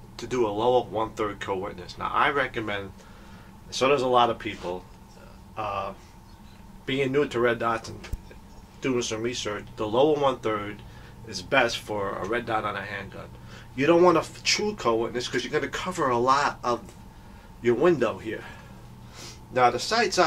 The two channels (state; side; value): identical; both; correlation 1.00